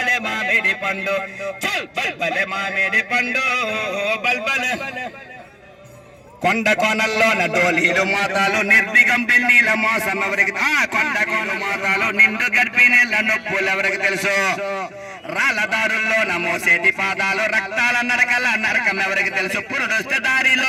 మామిడి పండు బల్బలే మామిడి పండు బల్బలే. కొండ కోనల్లోన డోలీలు మోతాలు నిర్దిగం పిన్నీల మోసం ఎవరికి కొండ కోన మోతాలు నిండు గడిపి నీళ్ళ నొప్పులు ఎవరికి తెలుసు, రాళ్ళదారుల్లోన మోసేటి పాదాలు రక్తాల నరకల నరకం ఎవరికి తెలుసు. పురుడొస్తే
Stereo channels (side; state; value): both; identical; correlation 1.00